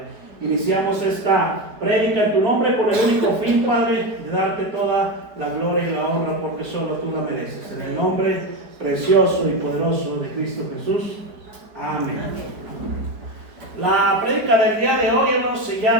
Iniciamos esta prédica en tu nombre con el único fin, Padre, de darte toda la gloria y la honra, porque solo tú la mereces. En el nombre precioso y poderoso de Cristo Jesús. Amén. La prédica del día de hoy, hermanos, se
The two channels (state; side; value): late; left; 4.8 ms